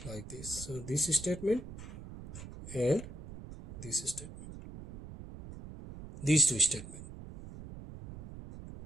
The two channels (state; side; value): noise; right; rumble, 12 dB below the sound